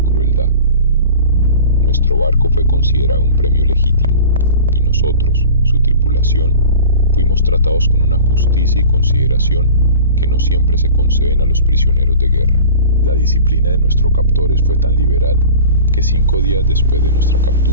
crueldad. Nuestro barco fue considerado un premio legítimo, y nosotros, su tripulación, fuimos tratados con una justicia y consideración que no siempre se conceden a los prisioneros de guerra. La disciplina de nuestros captores fue tan liberal que 5 días después de nuestra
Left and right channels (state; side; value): inverted; both; correlation -0.39